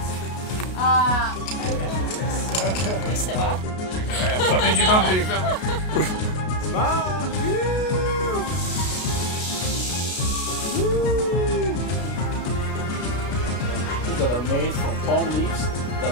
Smile! That are made from palm leaves that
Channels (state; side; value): late; right; 33 ms